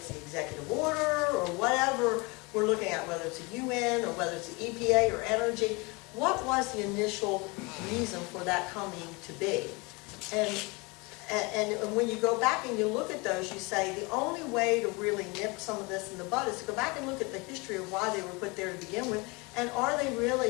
the executive order or whatever we're looking at, whether it's the UN or whether it's the EPA or energy. What was the initial reason for that coming to be? And when you go back and you look at those, you say the only way to really nip some of this in the bud is to go back and look at the history of why they were put there to begin with, and are they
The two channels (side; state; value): right; quieter; 27.1 dB